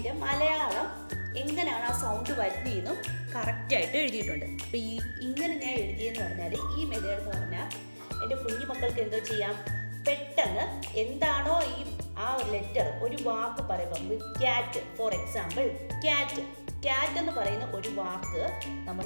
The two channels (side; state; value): both; inverted; correlation -1.00